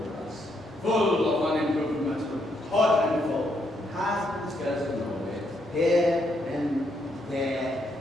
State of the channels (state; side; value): normal; both; correlation 0.75